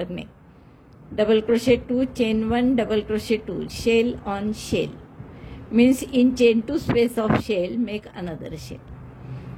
नाही. Double crochet 2, chain 1, double crochet 2, shell on shell, means in chain 2 space of shell make another shell.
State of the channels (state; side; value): identical; both; correlation 1.00